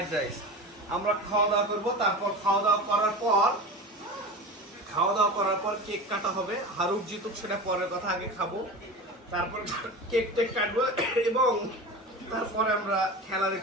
রাইস। আমরা খাওয়া দাওয়া করবো, তারপর খাওয়া দাওয়া করার পর কেক কাটা হবে। হারুক জিতুক সেটা পরের কথা, আগে খাবো, তারপর কেক টেক কাটবো এবং তারপরে আমরা খেলা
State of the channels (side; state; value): both; normal; correlation 0.30